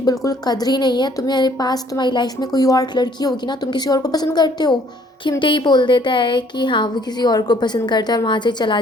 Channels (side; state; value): both; normal; correlation 0.61